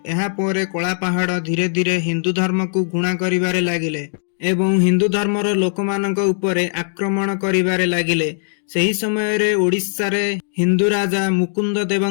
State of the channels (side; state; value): right; silent; digital silence